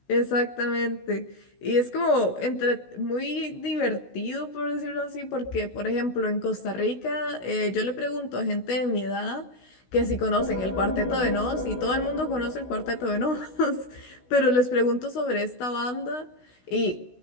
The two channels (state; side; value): late; right; 16 ms